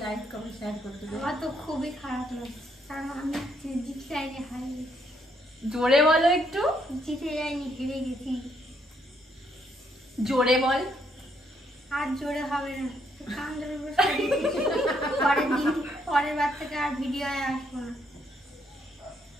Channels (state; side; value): normal; both; correlation 0.72